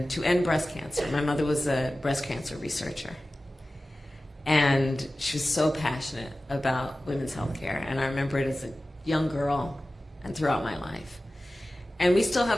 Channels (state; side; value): normal; both; correlation 0.96